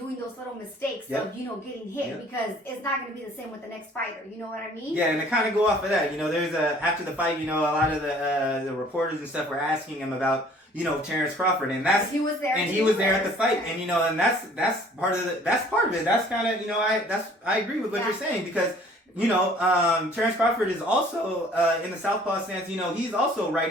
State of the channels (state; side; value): normal; both; correlation 0.54